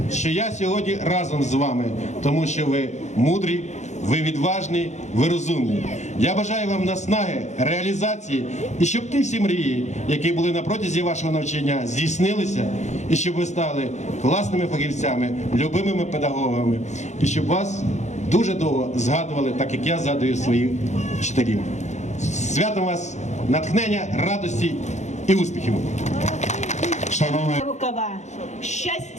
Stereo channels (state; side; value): late; right; 0.34 ms